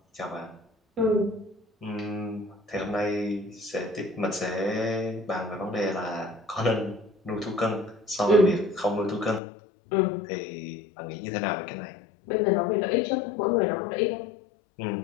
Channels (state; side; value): drops out; right; at 9.4 s